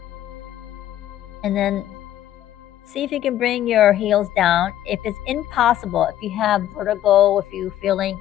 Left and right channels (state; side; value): quieter; right; 12.4 dB